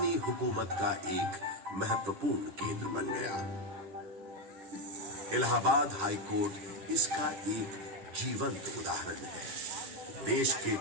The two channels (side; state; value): left; late; 10 ms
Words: हुकूमत का एक महत्वपूर्ण केंद्र बन गया। इलाहाबाद हाई कोर्ट इसका एक जीवंत उदाहरण है। देश के